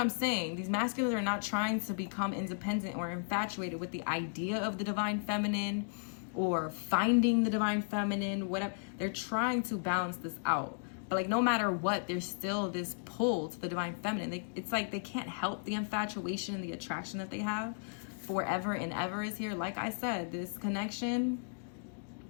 saying. These masculines are not trying to become independent or infatuated with the idea of the divine feminine or finding the divine feminine, whatever. They're trying to balance this out. But like, no matter what, there's still this pull to the divine feminine. It's like they can't help the infatuation and the attraction that they have. Forever and ever is here. Like I said, this connection,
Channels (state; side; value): silent; right; digital silence